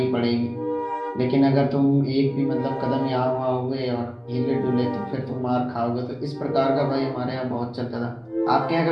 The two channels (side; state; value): both; identical; correlation 1.00